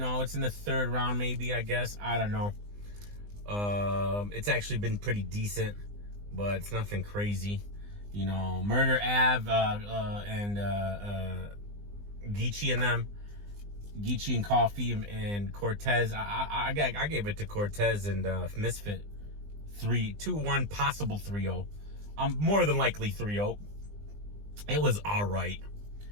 it's in the 3rd round, maybe, I guess. I don't know. It's actually been pretty decent, but it's nothing crazy. You know, Murder Av and Geechee and them. Geechee and Coffee and Cortez. I gave it to Cortez and Misfit. 2-1, possible 3-0. More than likely 3-0. It was all right.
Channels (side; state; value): left; late; 20 ms